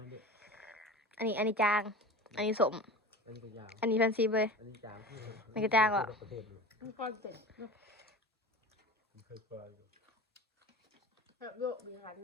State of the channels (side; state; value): both; normal; correlation 0.34